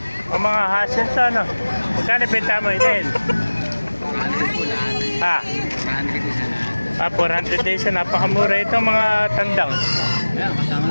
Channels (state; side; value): inverted; both; correlation -1.00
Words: O mga hassle to, no? Magkano benta mo inahin? 400 po lahat. Ha? 400 isa lahat. 400 days na. Napakamura ito mga tandang. Ayan, kasama